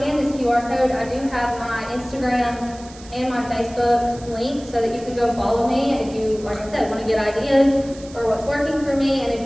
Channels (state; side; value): noise; right; hiss, 20 dB below the sound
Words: scan this QR code, I do have my Instagram and my Facebook link so that you can go follow me if you, like I said, want to get ideas for what's working for me. And